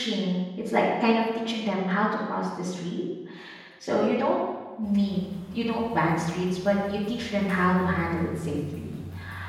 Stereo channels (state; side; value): identical; both; correlation 1.00